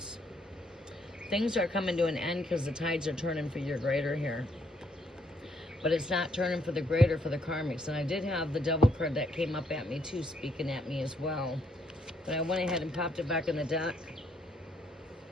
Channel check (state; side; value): normal; both; correlation 0.71